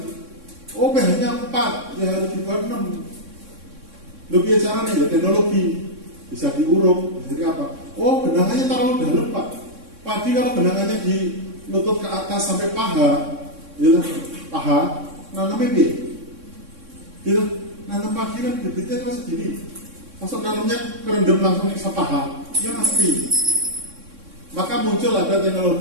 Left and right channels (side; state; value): left; late; 3.6 ms